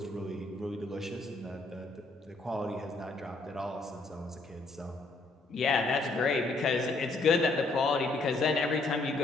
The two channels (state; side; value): quieter; right; 3.3 dB